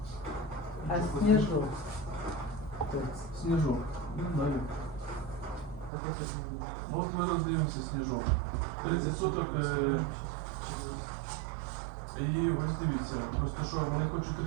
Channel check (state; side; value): drops out; left; at 5.9 s